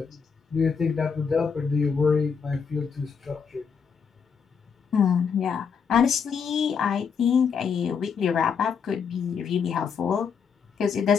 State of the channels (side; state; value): right; quieter; 6.3 dB